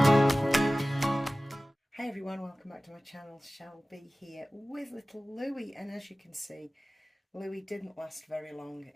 Hi everyone, welcome back to my channel. Shelby here with little Louie, and as you can see, Louie didn't last very long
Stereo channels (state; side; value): normal; both; correlation 0.97